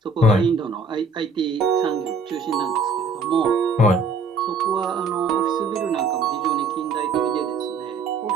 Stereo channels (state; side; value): quieter; left; 3.8 dB